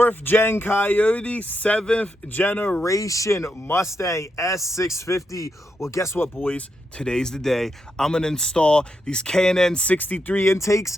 gen Coyote, 7th generation Mustang S650? Well, guess what, boys? Today's the day. I'm gonna install these K&N 63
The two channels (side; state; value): both; normal; correlation 0.83